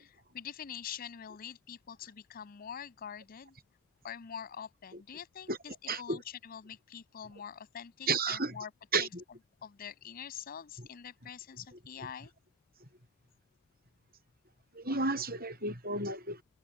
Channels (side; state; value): both; normal; correlation 0.07